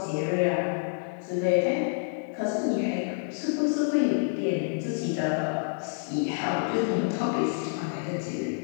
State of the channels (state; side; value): silent; right; digital silence